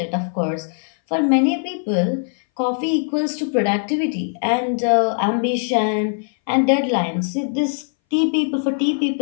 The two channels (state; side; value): silent; right; 62 dB below the other